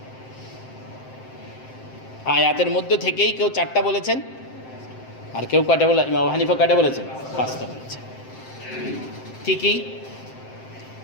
আয়াতের মধ্য থেকেই কেউ 4টা বলেছেন, আর কেউ কয়টা বলে, ইমাম আবু হানিফা কয়টা বলেছেন, 5টা বলেছেন। ঠিকই,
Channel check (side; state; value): right; late; 7.7 ms